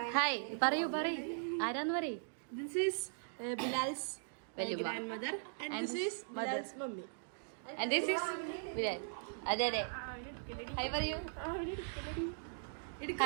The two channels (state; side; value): silent; left; digital silence